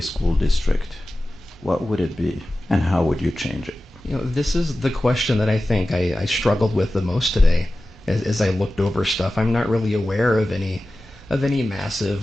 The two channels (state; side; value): normal; both; correlation 0.95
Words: District, what would it be, and how would you change it? This is the question that I think I struggled with the most today as I looked over stuff. I'm not really aware of any massive